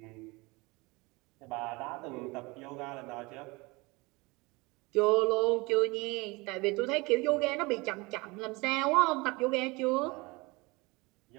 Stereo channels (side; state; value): left; quieter; 24.8 dB